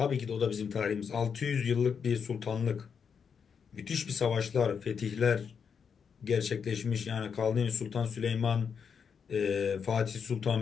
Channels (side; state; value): right; quieter; 6.6 dB